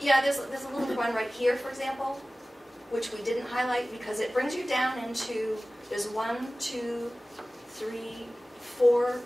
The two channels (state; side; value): normal; both; correlation 0.97